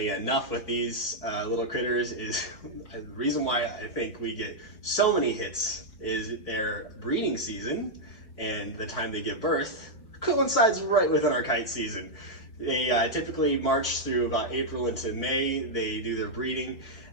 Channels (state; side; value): late; right; 4.7 ms